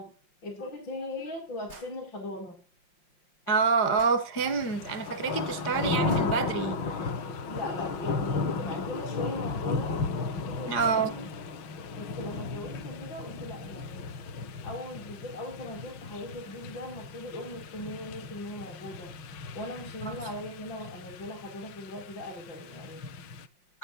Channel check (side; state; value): right; late; 5.6 ms